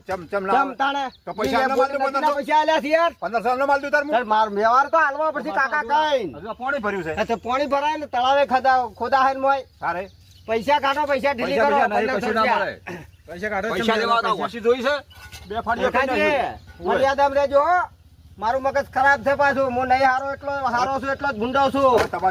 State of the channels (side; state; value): both; identical; correlation 1.00